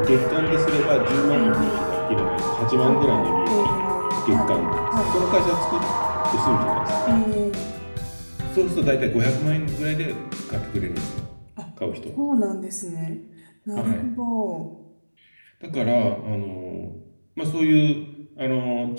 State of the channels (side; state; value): both; inverted; correlation -1.00